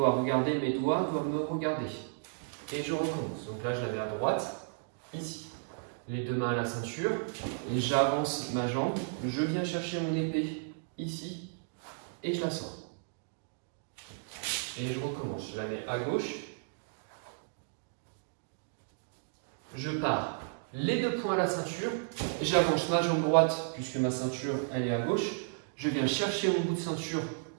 regarder, mes doigts doivent me regarder. Et je recommence. Donc là, je la mets à droite, ici. Les deux mains à la ceinture et j'avance ma jambe. Je viens chercher mon épée ici et je la sors. Et je recommence. Je la mets à gauche. Je pars les deux poings à la ceinture. J'avance ma jambe droite puisque ma ceinture elle est à gauche. Je viens chercher mon bout de ceinture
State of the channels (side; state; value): left; silent; digital silence